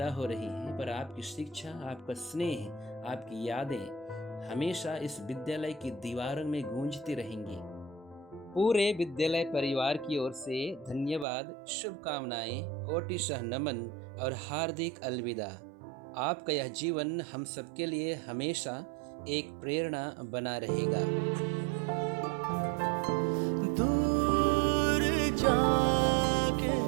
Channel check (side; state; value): left; drops out; at 11.2 s